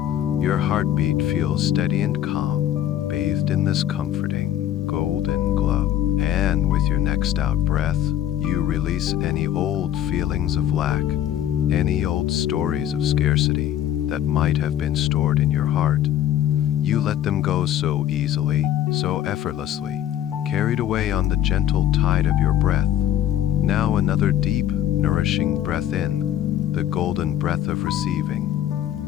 Your heartbeat feels steady and calm, bathed in this comforting, golden glow. And with your next out breath, you release any old feelings of lack, any old stories of scarcity that might have been stored in your heart. You let them go so easily, so effortlessly, carried away on the gentle tide of your breath. Now another deep, nourishing breath in, the golden breath of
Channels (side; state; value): right; quieter; 11.4 dB